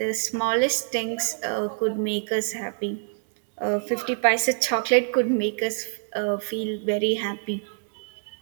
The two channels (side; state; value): left; silent; digital silence